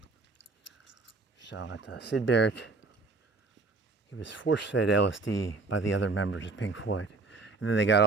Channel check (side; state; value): left; quieter; 3.8 dB